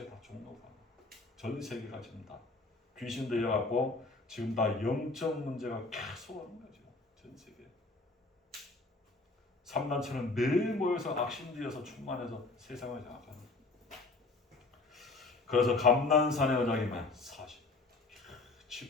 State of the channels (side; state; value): right; quieter; 3.4 dB